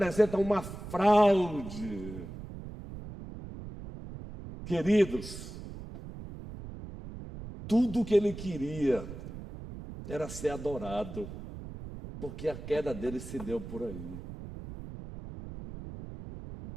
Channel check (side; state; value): right; noise; rumble, 11 dB below the sound